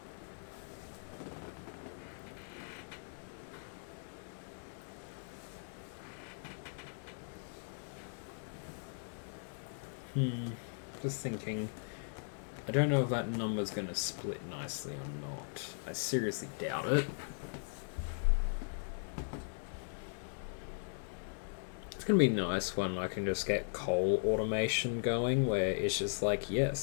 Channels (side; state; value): right; silent; digital silence